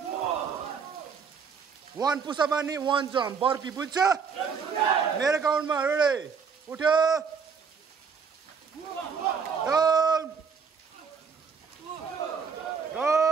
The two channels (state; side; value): quieter; left; 6.0 dB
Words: One push up and one jump. Burpee, बुझ्छ? मेरो काउन्टमा ready. उठ्यो. Down.